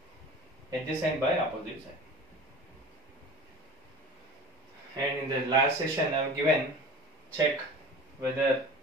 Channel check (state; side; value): normal; both; correlation 0.38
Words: adjacent by opposite side. And in the last session I have given, check whether